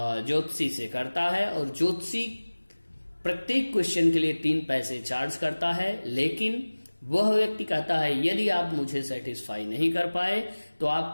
से करता है और ज्योतिषी प्रत्येक क्वेश्चन के लिए 3 पैसे चार्ज करता है, लेकिन वह व्यक्ति कहता है यदि आप मुझे सेटिस्फाई नहीं कर पाए तो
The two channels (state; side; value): inverted; both; correlation -1.00